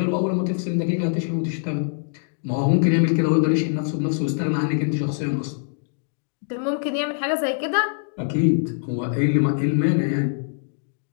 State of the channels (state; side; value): silent; right; digital silence